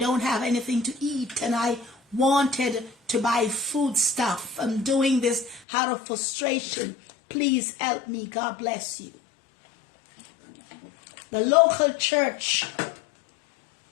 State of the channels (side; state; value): right; drops out; at 5.7 s